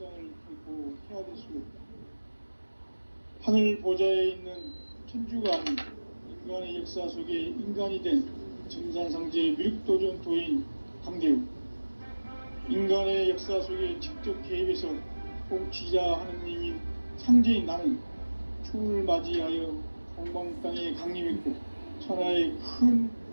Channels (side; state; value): both; inverted; correlation -1.00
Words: 결코 헤아릴 수 없다. 하늘 보좌에 있는 천주가 아닌 인간의 역사 속에 인간이 된 증산상제 미륵도전 도인 강대우, 인간의 역사 속에 직접 개입해서 통치자 하느님인 상제인 나는 추을 맞이하여 동방 땅에 강림했고 천하의 큰